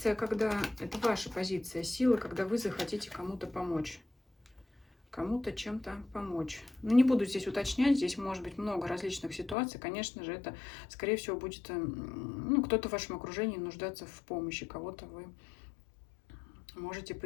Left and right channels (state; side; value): drops out; right; at 9.6 s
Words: когда... Это ваша позиция силы, когда вы захотите кому-то помочь. Кому-то чем-то помочь. Ну, не буду здесь уточнять, здесь может быть много различных ситуаций. Конечно же, это, скорее всего, будет, ну, кто-то в вашем окружении нуждаться в помощи, кого-то вы можете